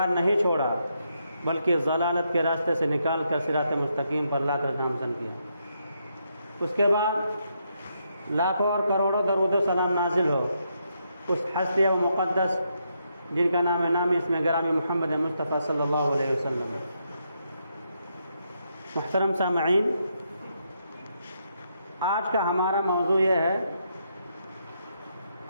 نہیں چھوڑا بلکہ ضلالت کے راستے سے نکال کر صراط مستقیم پر لا کر نامزن کیا۔ اس کے بعد لاکھوں اور کروڑوں درود و سلام نازل ہو اس ہستی و مقدس جن کا نام نامی اسم گرامی محمد مصطفیٰ صلی اللہ علیہ وسلم۔ محترم سامعین، آج کا ہمارا موضوع یہ ہے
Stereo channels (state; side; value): inverted; both; correlation -0.79